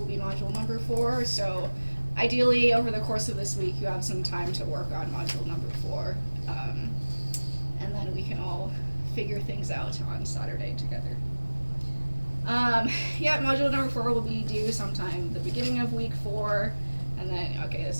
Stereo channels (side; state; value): both; inverted; correlation -1.00